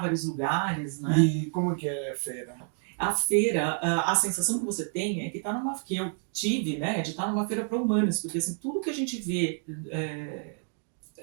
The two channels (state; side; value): silent; left; 57 dB below the other